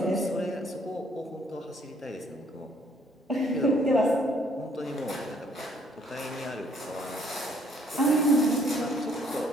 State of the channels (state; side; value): normal; both; correlation 0.64